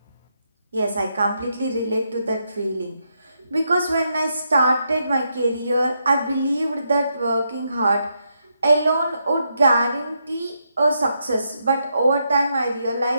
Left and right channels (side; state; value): both; inverted; correlation -0.80